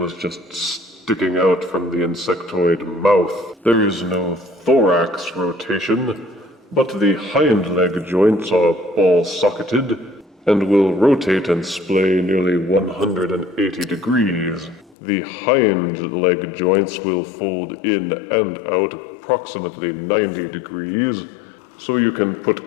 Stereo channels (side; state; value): right; drops out; at 15.0 s